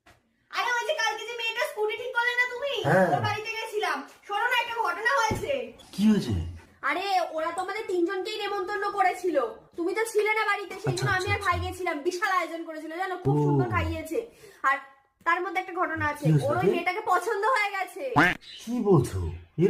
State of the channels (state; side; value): identical; both; correlation 1.00